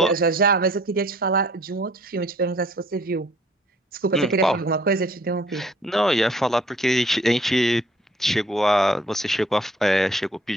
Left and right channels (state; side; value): normal; both; correlation 0.57